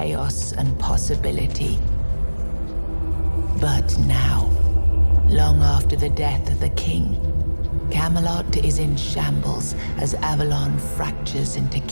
and possibility. But now, long after the death of the king, Camelot is in shambles as Avalon fractures into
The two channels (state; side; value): inverted; both; correlation -1.00